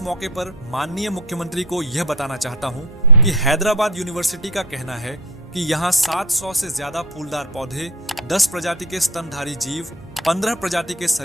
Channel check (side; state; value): both; normal; correlation 0.28